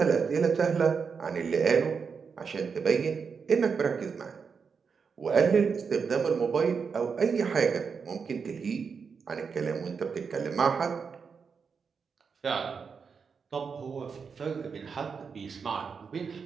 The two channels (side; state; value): left; quieter; 5.8 dB